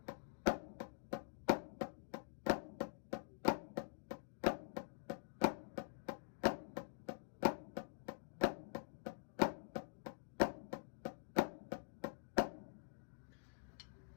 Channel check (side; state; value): right; silent; digital silence